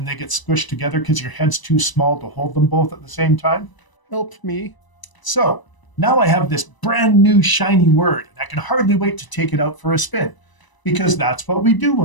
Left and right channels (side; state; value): right; late; 1.0 ms